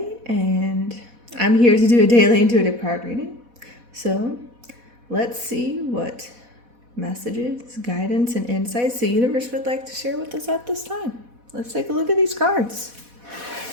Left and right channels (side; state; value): left; late; 4.1 ms